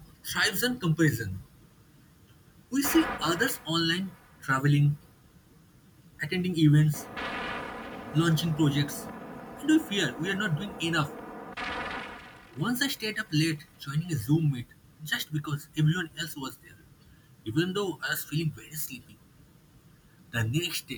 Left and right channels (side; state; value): both; identical; correlation 1.00